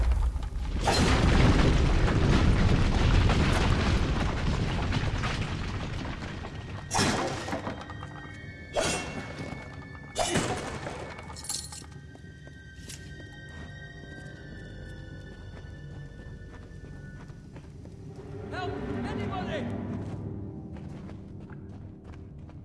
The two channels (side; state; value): both; identical; correlation 1.00